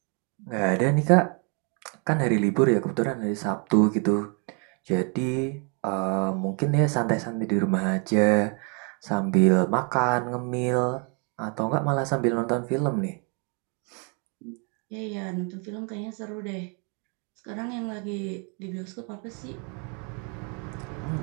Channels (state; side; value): quieter; left; 36.0 dB